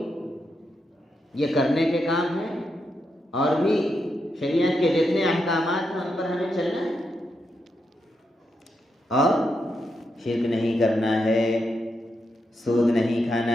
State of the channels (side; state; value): both; normal; correlation 0.84